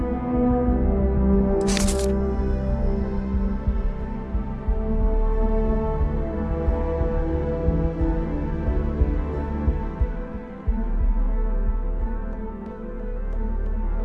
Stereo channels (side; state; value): both; identical; correlation 1.00